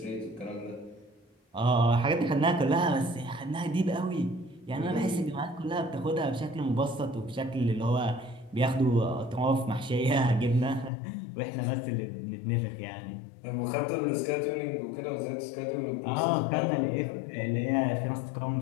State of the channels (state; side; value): drops out; right; at 10.9 s